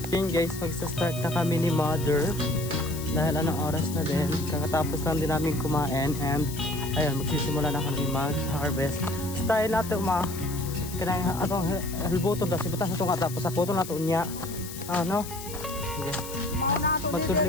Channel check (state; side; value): noise; left; hiss, 12 dB below the sound